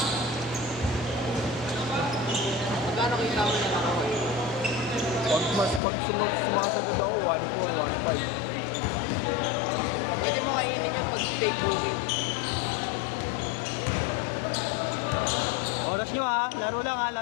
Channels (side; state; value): right; drops out; at 5.8 s